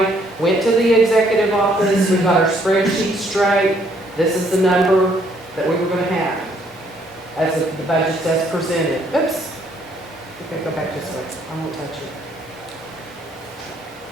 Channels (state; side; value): normal; both; correlation 0.67